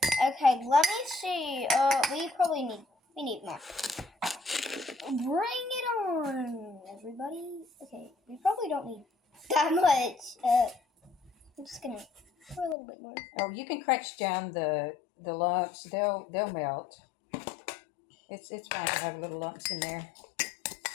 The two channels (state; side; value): drops out; right; at 12.8 s